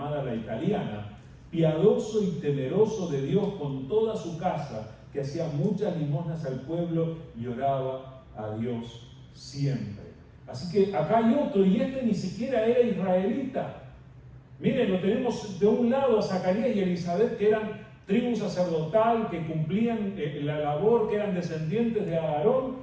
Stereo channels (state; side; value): identical; both; correlation 1.00